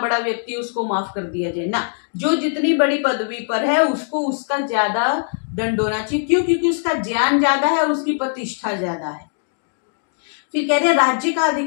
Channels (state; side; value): silent; right; digital silence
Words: बड़ा व्यक्ति उसको माफ कर दिया जाए ना, जो जितनी बड़ी पदवी पर है उसको उसका ज्यादा दंड होना चाहिए। क्यों? क्योंकि उसका ज्ञान ज्यादा है और उसकी प्रतिष्ठा ज्यादा है। फिर कहते हैं राज्य का